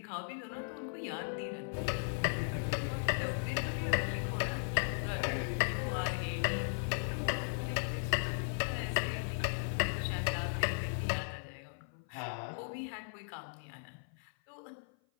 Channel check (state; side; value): silent; right; 53 dB below the other